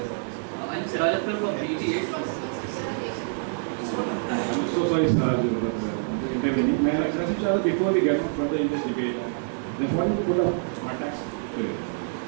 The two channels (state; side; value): silent; left; digital silence